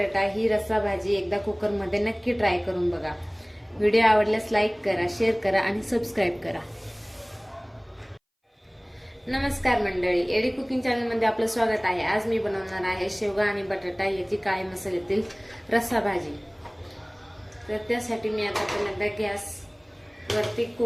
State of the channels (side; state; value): both; identical; correlation 1.00